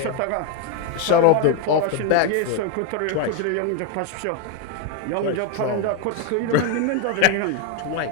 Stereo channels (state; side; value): different; both; correlation 0.01